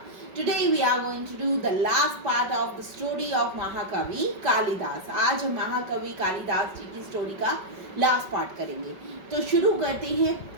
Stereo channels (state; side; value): late; left; 5.3 ms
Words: Today we are going to do the last part of the story of Mahakavi Kalidas. आज हम महाकवि कालिदास जी की story का last part करेंगे. तो शुरू करते हैं